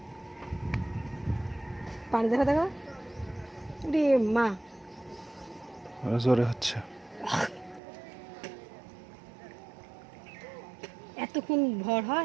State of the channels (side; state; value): left; drops out; at 7.8 s